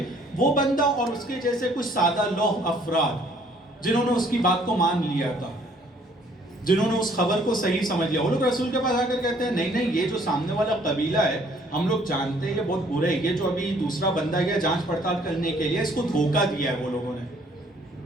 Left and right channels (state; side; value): normal; both; correlation 0.61